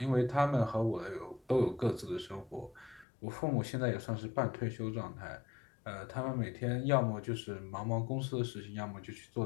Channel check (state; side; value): drops out; right; at 3.1 s